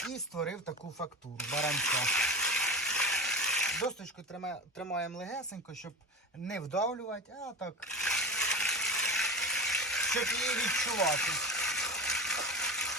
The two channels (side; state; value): both; normal; correlation 0.26